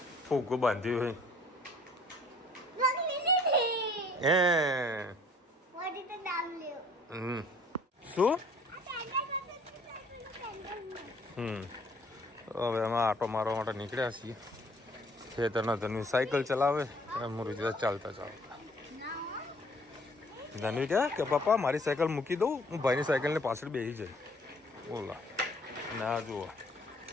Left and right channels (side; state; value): both; normal; correlation 0.57